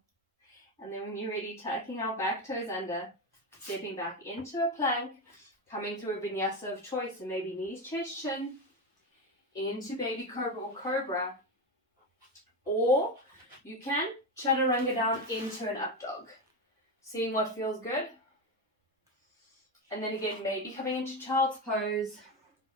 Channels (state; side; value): normal; both; correlation 0.15